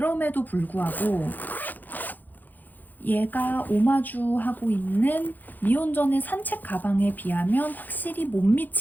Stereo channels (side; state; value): right; late; 0.085 ms